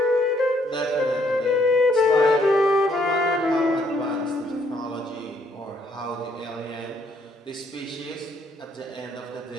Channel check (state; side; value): normal; both; correlation 0.68